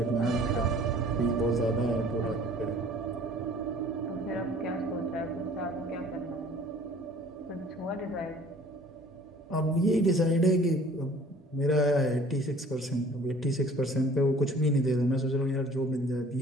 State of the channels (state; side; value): normal; both; correlation 0.51